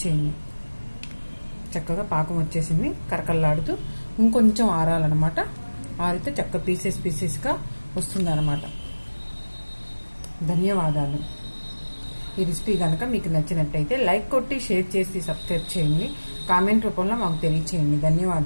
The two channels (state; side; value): inverted; both; correlation -1.00